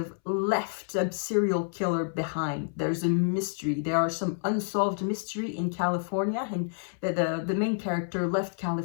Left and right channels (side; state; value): right; silent; 59 dB below the other